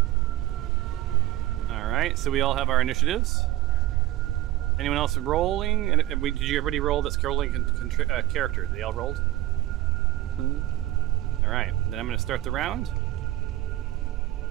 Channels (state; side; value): quieter; left; 15.7 dB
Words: All right, so we all have our initiatives. Anyone else rolling? And did you everybody roll that's rolling character? They all rolled? All right, then I'm going to start the round.